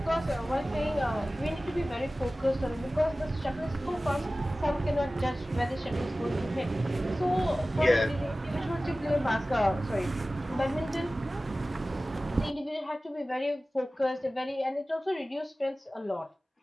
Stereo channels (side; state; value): both; normal; correlation 0.97